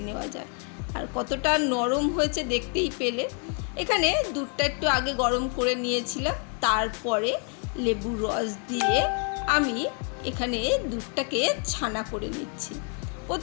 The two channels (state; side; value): quieter; right; 39.3 dB